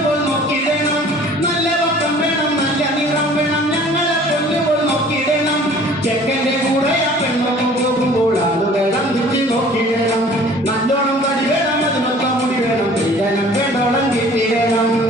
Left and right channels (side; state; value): both; normal; correlation 0.50